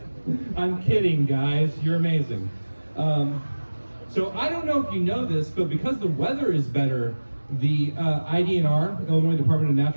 I'm kidding, guys. You're amazing. So I don't know if you know this, but because the weather is better, the IDNR, Illinois Department of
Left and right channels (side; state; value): both; inverted; correlation -1.00